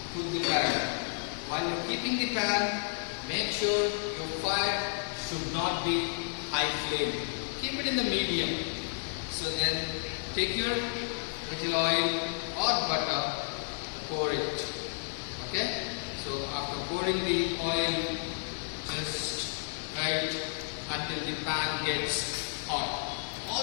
put the pan. While you're keeping the pan, make sure your fire should not be high flame. Keep it in the medium. So then take your little oil or butter, pour it. Okay? So after pouring the oil, just right until the pan gets hot.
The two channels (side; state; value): right; silent; 57 dB below the other